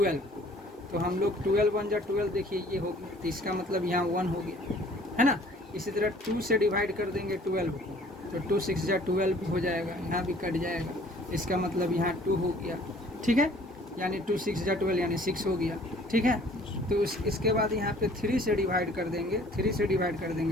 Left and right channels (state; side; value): normal; both; correlation 0.54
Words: को, तो हम लोग 12 1 जा 12, देखिए ये हो गया, तो इसका मतलब यहाँ 1 हो गया, है ना। इसी तरह 2 से डिवाइड कर देंगे 12 को, तो 2 6 जा 12 हो जाएगा, यहाँ भी कट जाएगा, इसका मतलब यहाँ 2 हो गया, ठीक है, यानी 2 6 जा 12 यानी 6 हो गया, ठीक है। तो इसके बाद यहाँ पे 3 से डिवाइड कर देंगे, 3 से डिवाइड कर